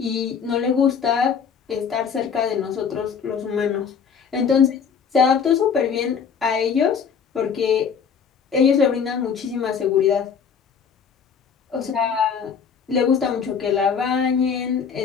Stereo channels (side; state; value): right; quieter; 6.6 dB